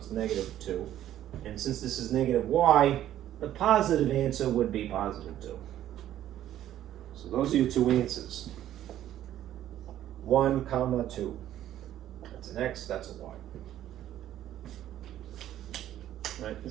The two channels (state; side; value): quieter; left; 12.2 dB